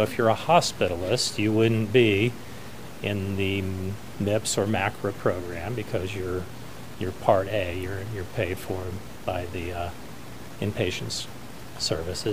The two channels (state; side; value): identical; both; correlation 1.00